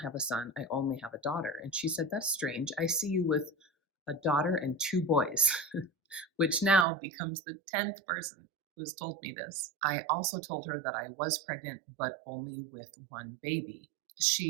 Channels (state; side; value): drops out; left; at 6.9 s